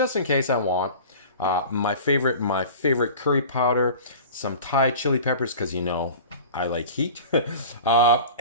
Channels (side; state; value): both; inverted; correlation -0.38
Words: in case I want. My favorite curry powder, some Thai chili peppers, because you know I like heat,